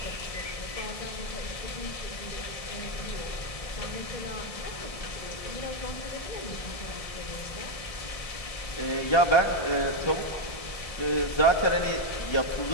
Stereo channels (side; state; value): right; late; 1.7 ms